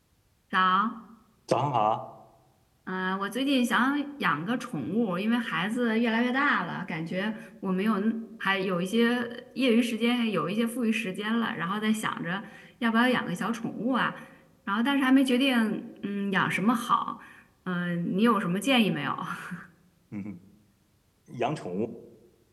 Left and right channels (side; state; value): both; identical; correlation 1.00